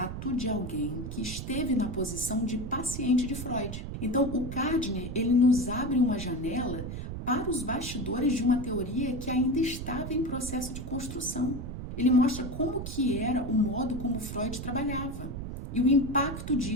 de alguém que esteve na posição de paciente de Freud. Então, o Gardner, ele nos abre uma janela para os bastidores de uma teoria que ainda estava em processo de construção. Ele mostra como que era o modo como Freud trabalhava e o impacto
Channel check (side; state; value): right; noise; rumble, 7 dB below the sound